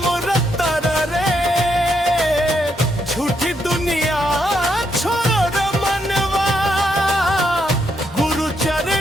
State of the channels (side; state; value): both; normal; correlation 0.78